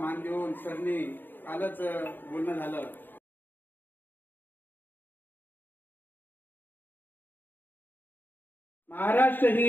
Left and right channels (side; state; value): right; late; 0.092 ms